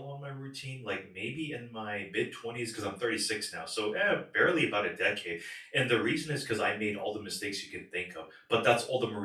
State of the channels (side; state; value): both; identical; correlation 1.00